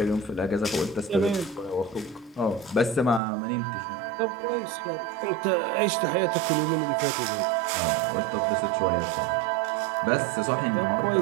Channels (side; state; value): left; drops out; at 3.2 s